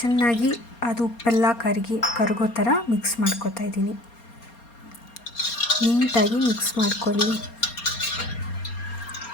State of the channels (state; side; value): late; right; 4.3 ms